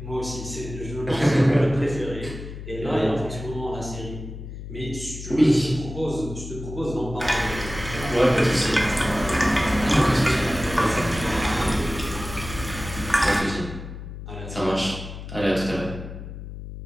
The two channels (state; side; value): noise; left; hum, 10 dB below the sound